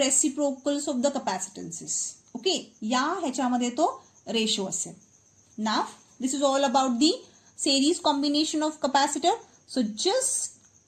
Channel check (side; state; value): both; identical; correlation 1.00